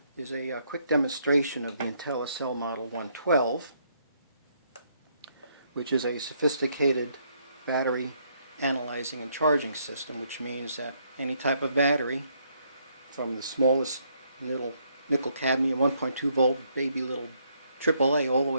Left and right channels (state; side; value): inverted; both; correlation -0.71